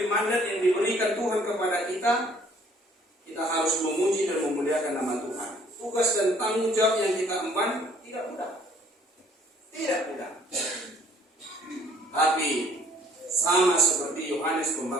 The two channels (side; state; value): both; normal; correlation 0.59